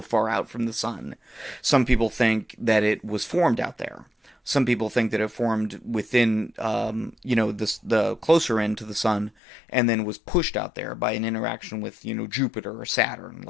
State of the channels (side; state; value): right; drops out; at 9.3 s